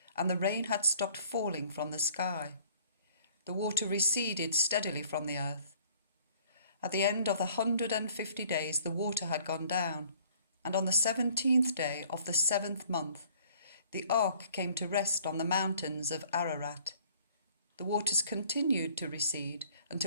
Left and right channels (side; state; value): both; inverted; correlation -0.56